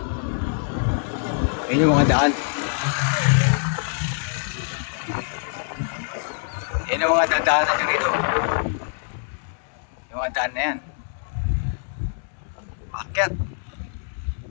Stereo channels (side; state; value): right; silent; digital silence